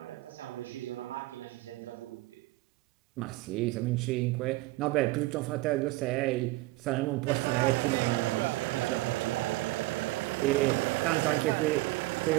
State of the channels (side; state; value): left; quieter; 20.0 dB